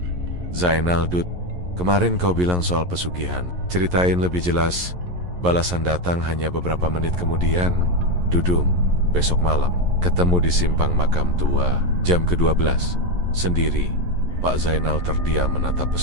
"Zainal, Dud, kemarin kau bilang soal pesugihan. Ceritain lebih jelas." Balasan datang hanya beberapa menit kemudian. "Dudung, besok malam ketemu di simpang makam tua, jam ke-12, sendiri." Pak Zainal terdiam menatap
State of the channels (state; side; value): late; left; 11 ms